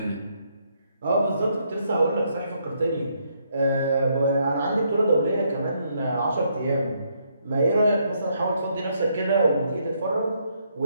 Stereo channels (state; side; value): inverted; both; correlation -0.74